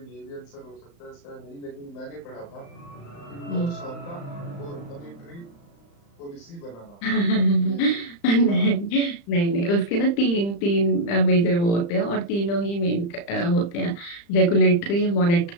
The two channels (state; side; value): late; right; 35 ms